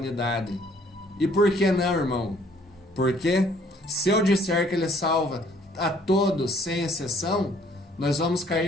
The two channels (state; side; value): normal; both; correlation 0.61